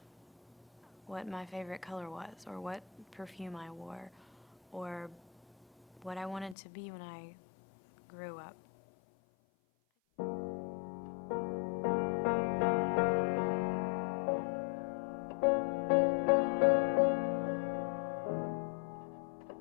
what my favorite color was or what perfume I wore or what I wanted to be when I grew up.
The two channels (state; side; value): drops out; right; at 6.6 s